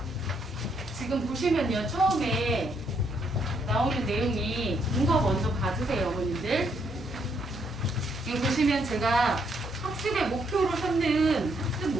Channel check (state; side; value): normal; both; correlation 0.73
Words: 지금 보시면요, 처음에 나오는 내용이 이거 먼저 봐주세요, 어머님들. 이거 보시면 제가 학습의 목표로 삼는 학습